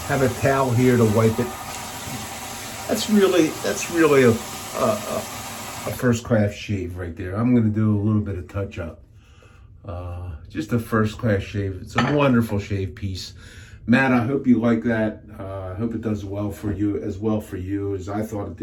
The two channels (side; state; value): both; identical; correlation 1.00